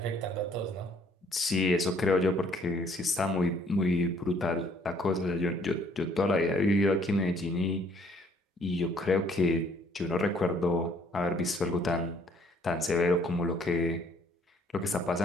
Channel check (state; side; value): normal; both; correlation 0.62